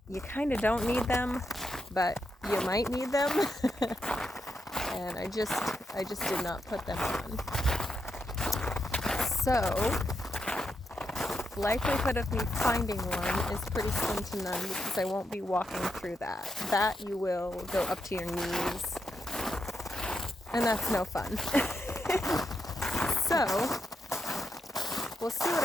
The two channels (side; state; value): both; normal; correlation 0.82